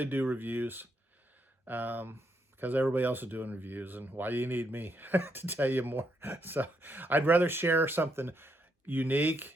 do reviews because everybody else is doing reviews, and why do you need me to tell you more? So I'd rather share something unique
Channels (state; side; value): normal; both; correlation 0.78